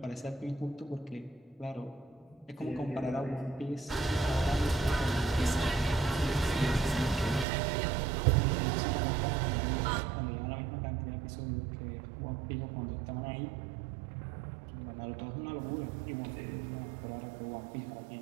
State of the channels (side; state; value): left; drops out; at 7.5 s